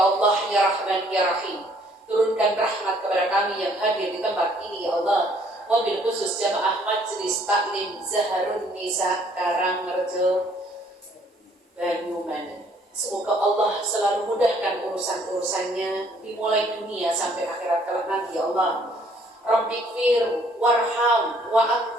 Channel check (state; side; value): normal; both; correlation 0.62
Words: Allah, ya Rahman, ya Rahim, turunkan rahmat kepada kami yang hadir di tempat ini ya Allah, wabil khusus jamaah Majelis Taklim Zaharun Nisa Karangrejo Banyumanik. Semoga Allah selalu mudahkan urusan-urusannya dimulai dunia sampai akhirat kelak nanti ya Allah. Rabbighfir warham wa